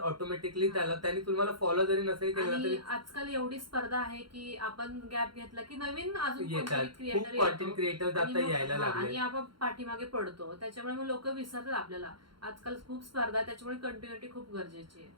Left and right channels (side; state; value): left; late; 0.73 ms